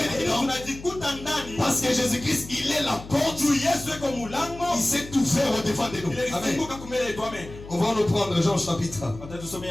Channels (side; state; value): left; noise; hum, 15 dB below the sound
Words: dedans parce que Jésus-Christ il est la porte. Il s'est tout fait au devant de nous. Amen. On va nous prendre Jean chapitre